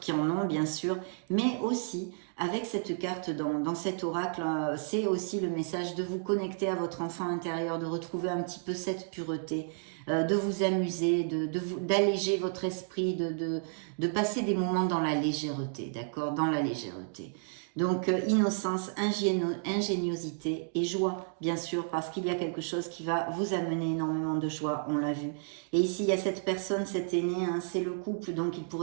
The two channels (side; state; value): left; silent; digital silence